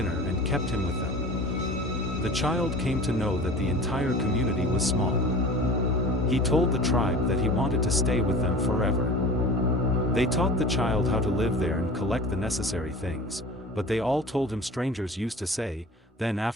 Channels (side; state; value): both; normal; correlation 0.38